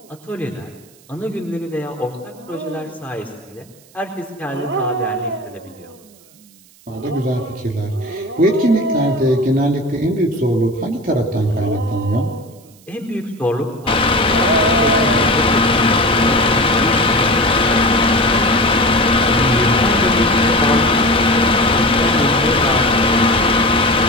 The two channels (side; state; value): right; noise; hiss, 28 dB below the sound